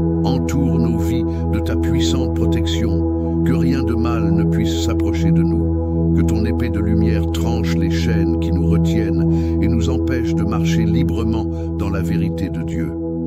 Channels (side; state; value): both; identical; correlation 1.00